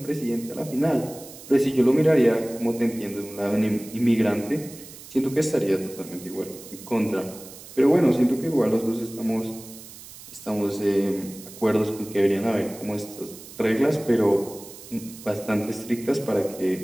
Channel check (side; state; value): right; noise; hiss, 17 dB below the sound